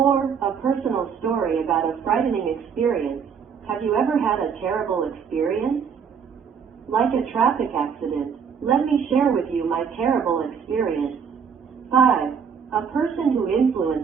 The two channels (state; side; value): quieter; left; 6.7 dB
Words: A personal story about a frightening experience. Have you ever had a terrible experience? Like a traffic accident, let me share with you my terrible experience. 5. A person who